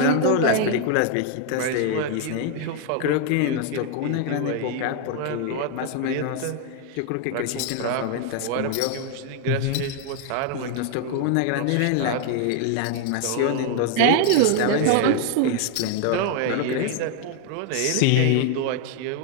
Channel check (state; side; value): different; both; correlation 0.00